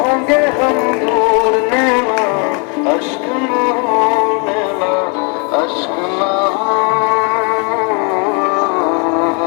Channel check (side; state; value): right; quieter; 35.3 dB